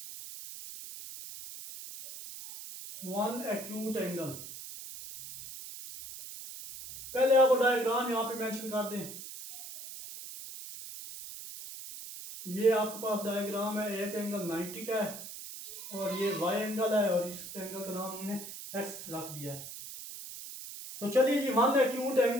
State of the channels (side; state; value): right; noise; hiss, 11 dB below the sound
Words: वन एक्यूट एंगल, पहले आपको डायग्राम यहाँ पे मेंशन कर दें। ये आपके पास डायग्राम है, एक एंगल 90 का है और ये वाई एंगल है और इस एंगल का नाम हमने एक्स रख दिया है। तो चलिए जी वन एक्यूट